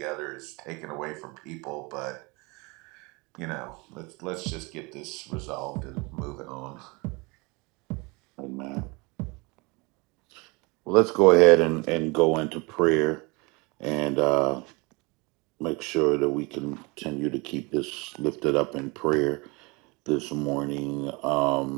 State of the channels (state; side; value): quieter; left; 27.3 dB